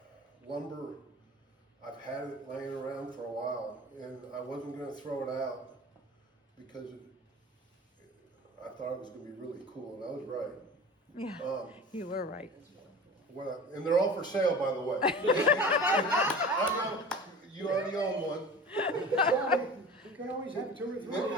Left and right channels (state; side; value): normal; both; correlation 0.37